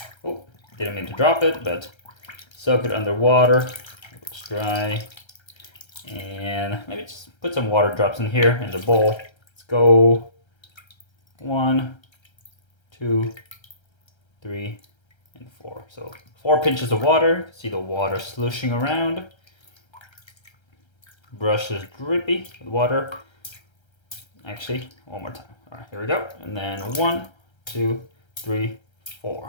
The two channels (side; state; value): right; late; 1.3 ms